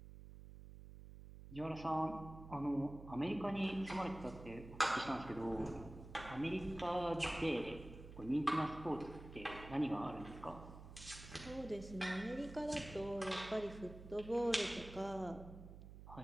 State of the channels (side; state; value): right; noise; hum, 14 dB below the sound